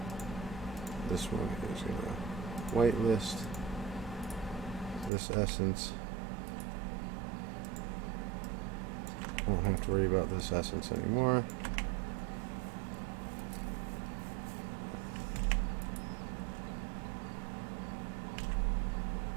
This one is going to whitelist. This essence. Won't have to worry about this essence anymore.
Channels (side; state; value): left; drops out; at 5.1 s